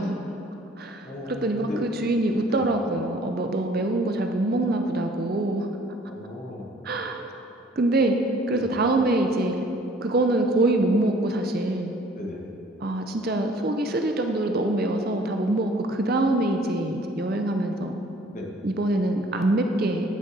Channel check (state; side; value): normal; both; correlation 0.56